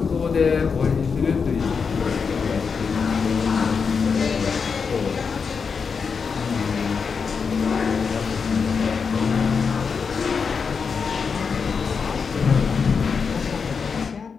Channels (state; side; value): quieter; right; 5.6 dB